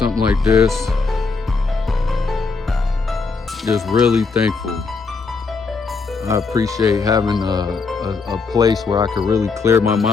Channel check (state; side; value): quieter; right; 4.5 dB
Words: like this. Just really thankful. I appreciate having a place where I could really clear my